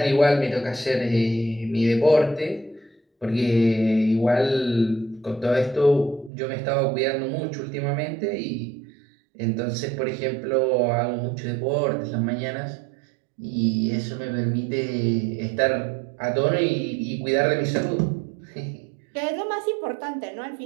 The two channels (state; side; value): drops out; left; at 6.3 s